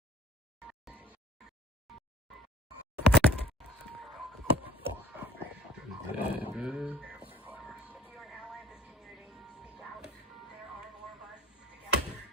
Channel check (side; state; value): both; normal; correlation 0.46